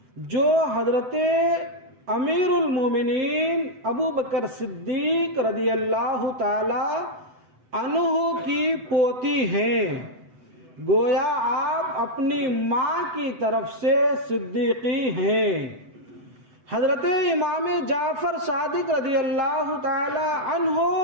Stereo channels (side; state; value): left; late; 7.9 ms